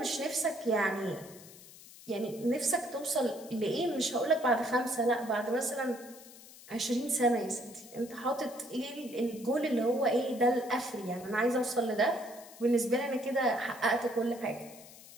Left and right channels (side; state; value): left; noise; hiss, 19 dB below the sound